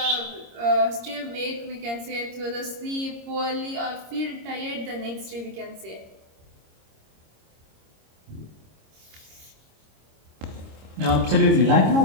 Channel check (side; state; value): left; late; 26 ms